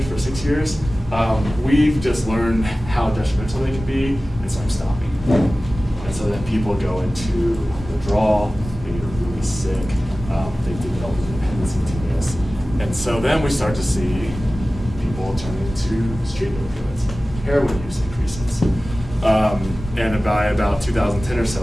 for 6 years, we've just learned how detrimental they can be, and so I'm stopping. And so then people go into withdrawal, they get really sick, they develop a dependency to this. And so then we start to see people turning to street opioids. Heroin use increases. And by about 2010 or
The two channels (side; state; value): both; normal; correlation 0.96